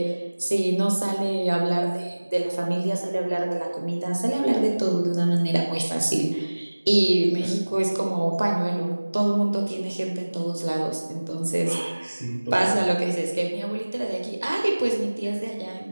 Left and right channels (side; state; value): both; inverted; correlation -1.00